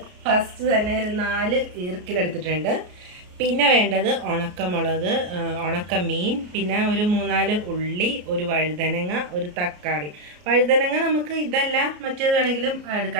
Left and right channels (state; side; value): late; left; 33 ms